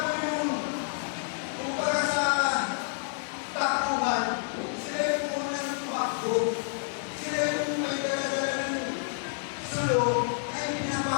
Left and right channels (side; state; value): right; silent; 59 dB below the other